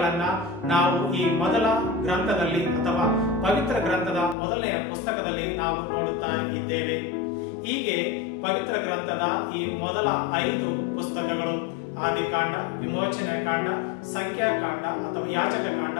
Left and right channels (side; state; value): right; drops out; at 4.4 s